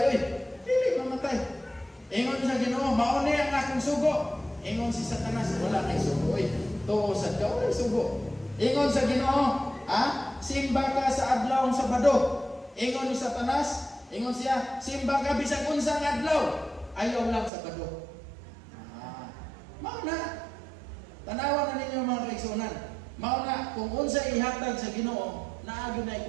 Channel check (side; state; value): left; drops out; at 17.5 s